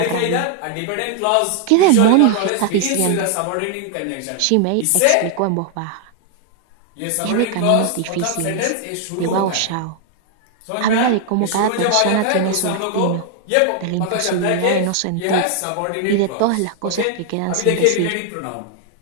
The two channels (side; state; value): both; different; correlation 0.00